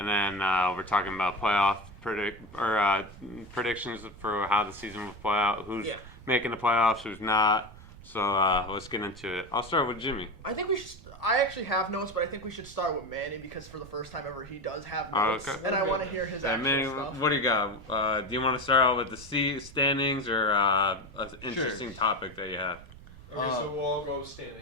then we're talking about playoff predictions for how the season will play out, who's making the playoffs, who's not. So let's get into it. I'll start with Jimmy. I think we should. I actually have notes, but I think we should start with Manny because for the first time ever, he does have notes, and I want to hear his actual Manny, stuff. what do you got? Do you want to start out with the standings or an interesting topic that you have? Okay, so we'll all go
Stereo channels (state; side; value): noise; right; rumble, 18 dB below the sound